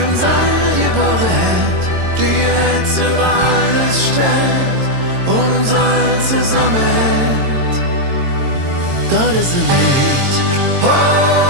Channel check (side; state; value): left; late; 22 ms